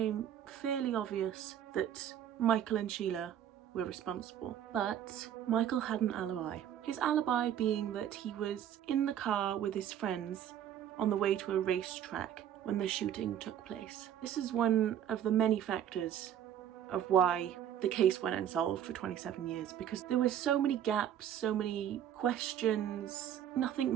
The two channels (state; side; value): quieter; left; 10.2 dB